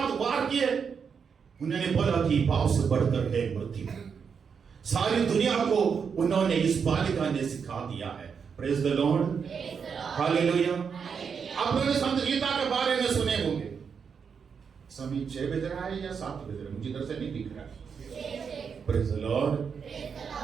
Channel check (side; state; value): left; quieter; 6.4 dB